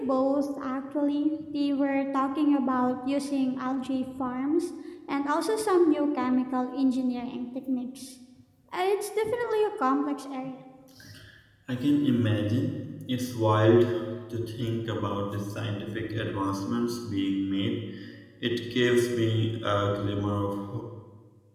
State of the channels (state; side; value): identical; both; correlation 1.00